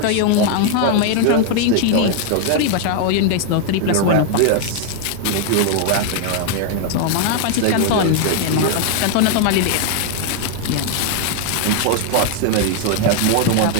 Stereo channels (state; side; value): different; both; correlation 0.00